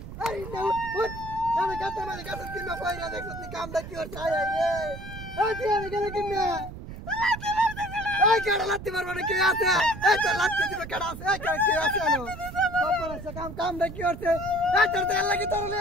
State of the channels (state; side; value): noise; right; rumble, 11 dB below the sound